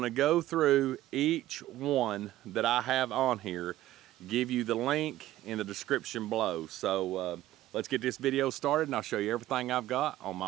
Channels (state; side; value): quieter; left; 14.7 dB